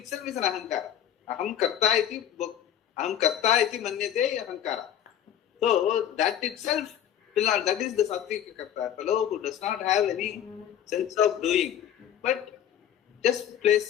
is an ahankara. Aham karta iti manyate ahankara. So that itself will not, that is the sattvika karta. A fellow who does not have any sense of doing, but just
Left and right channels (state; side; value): quieter; right; 10.2 dB